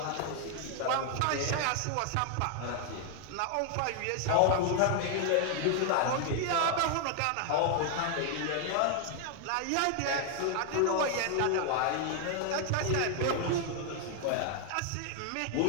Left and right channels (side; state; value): both; different; correlation 0.00